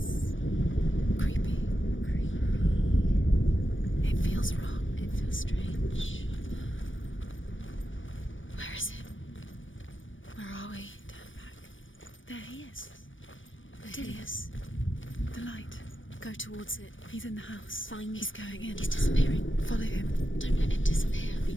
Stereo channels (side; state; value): right; late; 0.56 ms